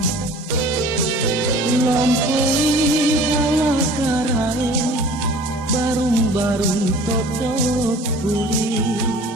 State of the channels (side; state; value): both; normal; correlation 0.46